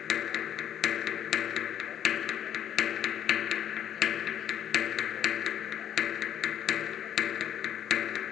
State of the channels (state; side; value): quieter; right; 10.1 dB